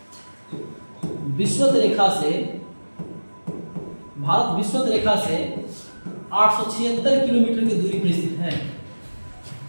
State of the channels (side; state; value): both; inverted; correlation -1.00